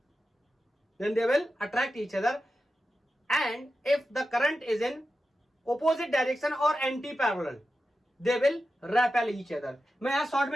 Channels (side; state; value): both; normal; correlation 0.91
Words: and if the current is in opposite direction or anti parallel they will repel each other। मैं यहां शॉर्ट